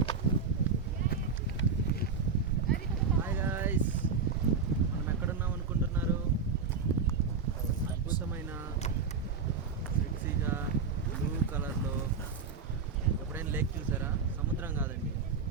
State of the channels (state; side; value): quieter; left; 5.3 dB